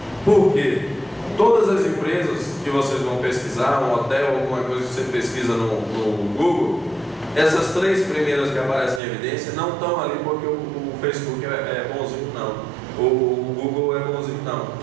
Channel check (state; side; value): drops out; left; at 9.0 s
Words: Por quê? Todas as empresas que vocês vão pesquisar, um hotel, alguma coisa que você pesquisa no Google, essas três primeiras que aparecem em evidência não estão ali porque o Facebook é bonzinho, não. O Google é bonzinho, não.